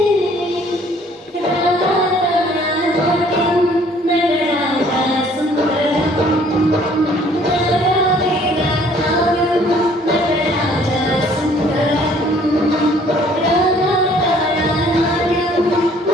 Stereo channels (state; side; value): normal; both; correlation 0.58